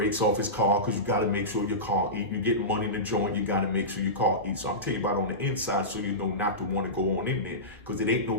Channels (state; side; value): normal; both; correlation -0.18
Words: off his car because you got to make sure your car eat. You get money in the joint, you got to make sure your car eats. So I'm telling you about on the inside so you know not to want to go on in there, because it ain't